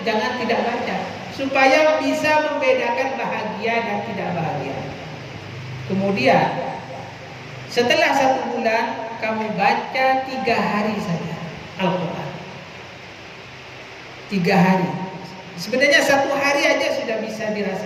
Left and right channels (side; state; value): both; identical; correlation 1.00